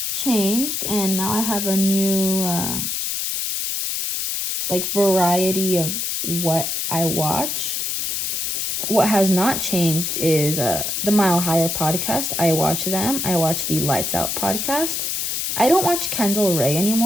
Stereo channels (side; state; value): left; noise; hiss, 1 dB below the sound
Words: changed, and now I have a new variety of what I watch. What has not changed is the Mile Higher podcast. I watch them. I watch the Lights Out podcast. I don't watch Kendall Ray